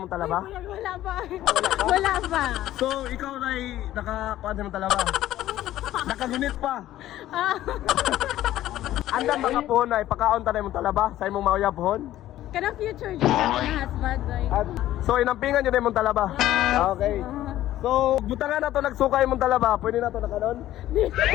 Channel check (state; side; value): quieter; right; 13.8 dB